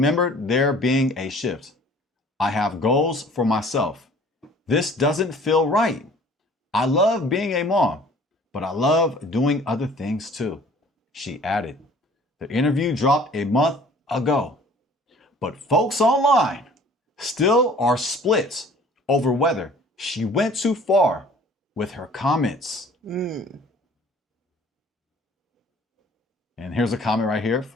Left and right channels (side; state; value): both; normal; correlation 0.51